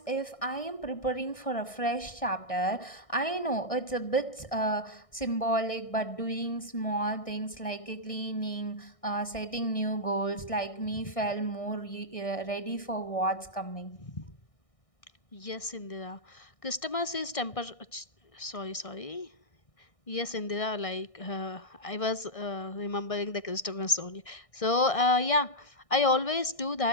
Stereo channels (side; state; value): right; late; 1.6 ms